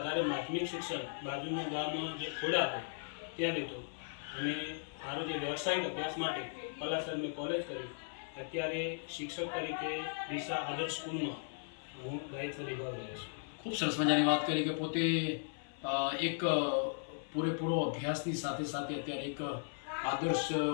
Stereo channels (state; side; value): silent; right; 53 dB below the other